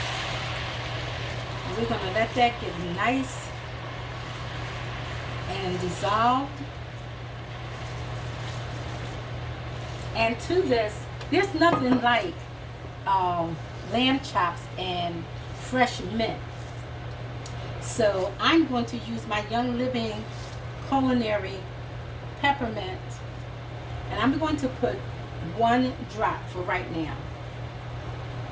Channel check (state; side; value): identical; both; correlation 1.00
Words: We're going to let that get nice and dissolved. And to this, there's nothing like lamb chops and fresh mint. So I'm going to use my Young Living culinary peppermint, and I'm going to put 1 drop for right now.